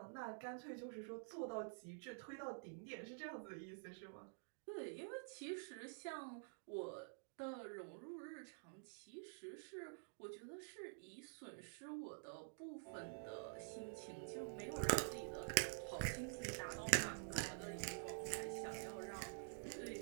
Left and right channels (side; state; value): left; silent; digital silence